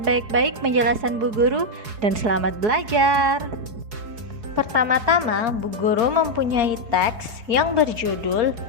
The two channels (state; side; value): late; left; 4.7 ms